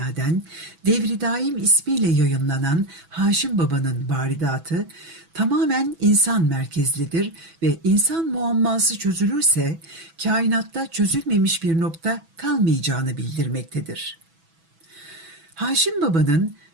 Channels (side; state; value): left; late; 6.1 ms